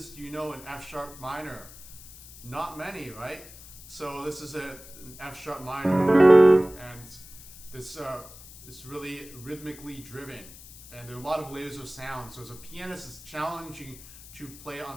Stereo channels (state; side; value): noise; left; hiss, 18 dB below the sound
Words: do you know in F sharp minor? Not many, right? So this is an F sharp minor, and this is really rhythmically driven, and there are a lot of layers of sound. So as a pianist, it's challenging to play